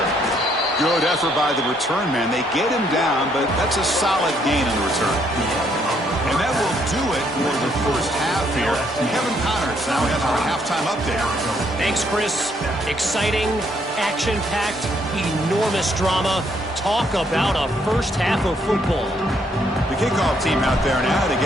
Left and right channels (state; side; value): normal; both; correlation 0.70